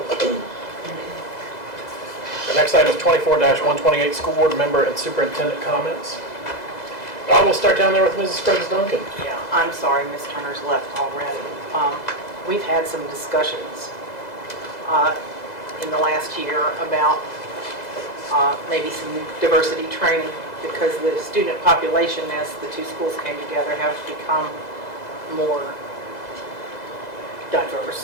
The next item is 24-128, School Board member and Superintendent comments. I will start down there with Mrs. Scruggs Duncan. Yeah, I'm sorry Ms. Turner's left already. We've had some discussions in the last year about maybe some diversity training, because the student population as the two schools came together have become more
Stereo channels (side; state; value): right; late; 2.0 ms